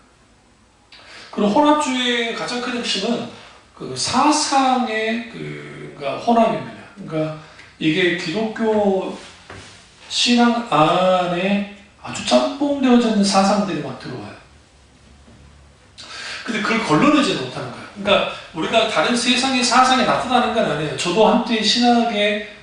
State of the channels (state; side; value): identical; both; correlation 1.00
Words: 그리고 혼합주의의 가장 큰 핵심은 그 사상의 그러니까 혼합입니다. 그러니까 이게 기독교 신앙 안에 아주 짬뽕되어져 있는 사상들이 막 들어와요. 근데 그걸 걸러내지 못하는 거예요. 그러니까 우리가 다른 세상의 사상이 나타나는 건 아니에요. 저도 한때 신학에